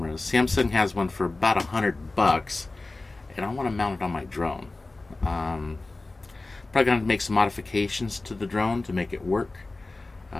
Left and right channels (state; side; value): quieter; right; 3.2 dB